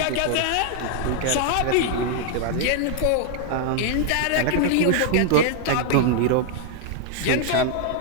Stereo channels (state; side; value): different; both; correlation 0.00